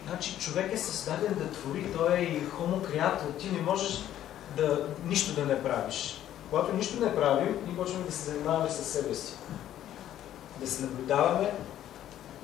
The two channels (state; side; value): quieter; right; 11.9 dB